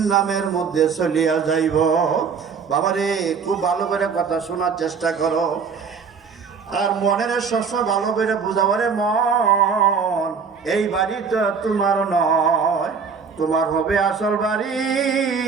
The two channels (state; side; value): quieter; left; 5.8 dB